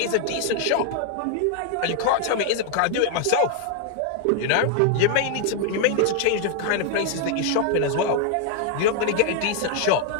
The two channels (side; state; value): both; different; correlation 0.00